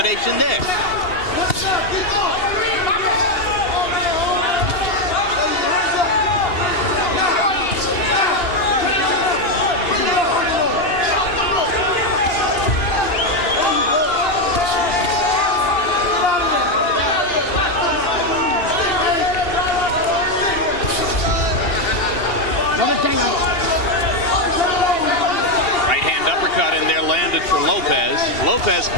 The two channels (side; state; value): right; late; 2.8 ms